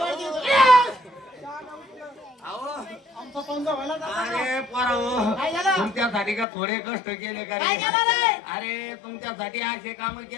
आमचा पंजा व्हायला अरे पोरा काय झालं? तुमच्यासाठी का थोडे कष्ट केले का काय रे? झालं रे? अरे तुमच्यासाठी असे काम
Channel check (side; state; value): right; drops out; at 6.5 s